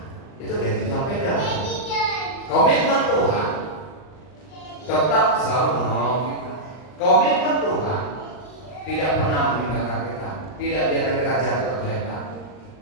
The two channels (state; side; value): late; right; 39 ms